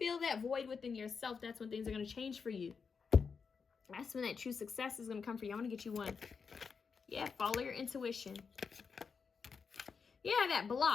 that void within yourself. That's when things are going to change for you. That's when that true success is going to come for you. I'm going to get you one. Yeah, follow your intuition. Yeah, that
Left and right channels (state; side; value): quieter; right; 5.6 dB